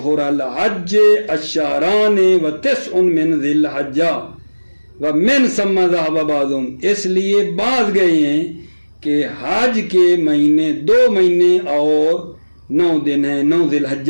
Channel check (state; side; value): inverted; both; correlation -1.00